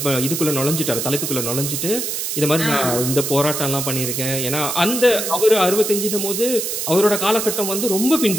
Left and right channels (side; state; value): right; noise; hiss, 3 dB below the sound